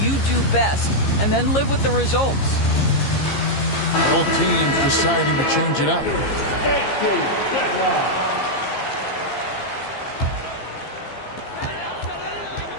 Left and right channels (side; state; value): right; late; 15 ms